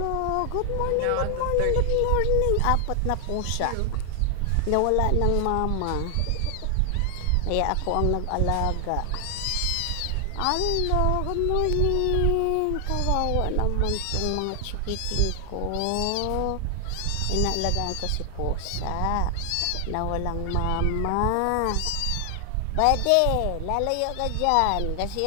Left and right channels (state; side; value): different; both; correlation 0.00